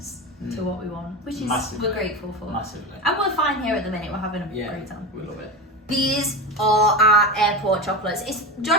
to what we want, which is Massively. we're grateful for. Massively. And we're fine here at the minute. We're having a Yeah, great time. we love it. These are our airport chocolates.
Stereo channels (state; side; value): normal; both; correlation 0.22